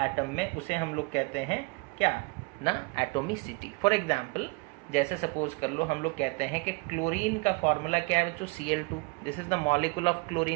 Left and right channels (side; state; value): left; quieter; 28.4 dB